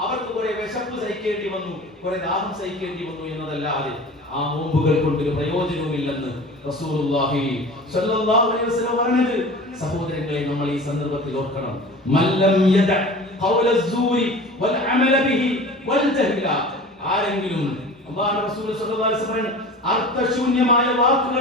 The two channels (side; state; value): both; normal; correlation 0.38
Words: അവർക്ക് കുറെ വിശപ്പ് സഹിക്കേണ്ടി വന്നു, കുറെ ദാഹം സഹിക്കേണ്ടി വന്നു എന്നതല്ലാതെ ആ നോമ്പുകൾ കൊണ്ടൊരു പ്രയോജനവുമില്ലെന്ന് റസൂലുള്ളാഹി സ്വല്ലല്ലാഹു അലൈഹി വസല്ലം പറഞ്ഞത്. സഹോദരങ്ങളെ, നമ്മൾ ഈ സന്ദർഭത്തിൽ ഓർക്കണം. മല്ലം യദ ഖൗല അസ്സൂരി വൽ അമല ബിഹി വൽ ജഹ്ല, ആരെങ്കിലും അല്ലാഹുവിന്റെ റസൂൽ സ്വല്ലല്ലാഹു അലൈഹി വസല്ലം അർത്ഥശൂന്യമായ